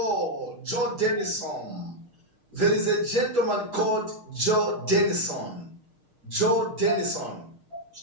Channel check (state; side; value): late; left; 6.5 ms